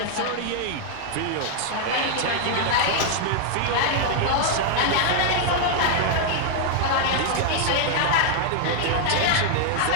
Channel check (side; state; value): both; different; correlation 0.00